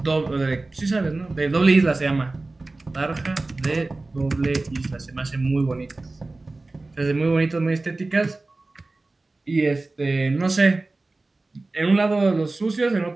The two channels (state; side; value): quieter; left; 3.2 dB